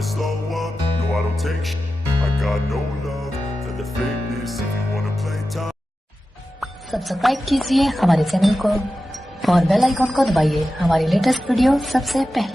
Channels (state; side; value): normal; both; correlation 0.93